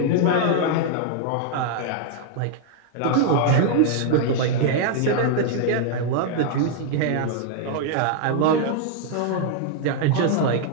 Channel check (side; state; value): both; different; correlation 0.00